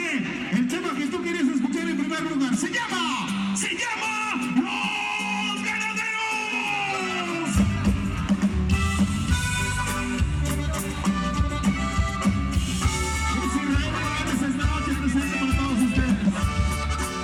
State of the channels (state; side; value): identical; both; correlation 1.00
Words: El tema que tú querías escuchar en primer lugar se llama Los Ganaderos. Es Israel Morales esta noche presente para todos ustedes.